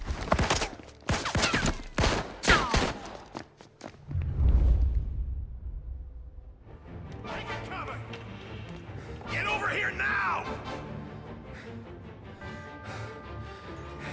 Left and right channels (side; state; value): both; identical; correlation 1.00